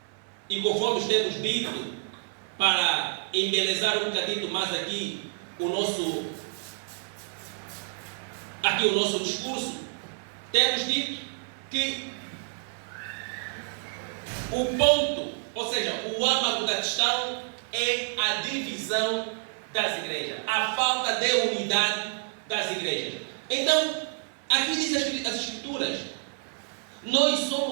e conforme temos dito, para embelezar um bocadinho mais aqui o nosso discurso, temos dito que o ponto, ou seja, o âmago da questão é a divisão das igrejas, a falta de unidade das igrejas. Então, aqui diz as Escrituras, nós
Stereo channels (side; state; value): left; silent; 59 dB below the other